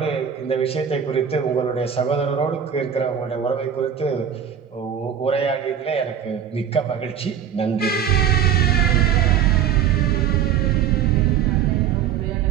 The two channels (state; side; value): quieter; left; 8.7 dB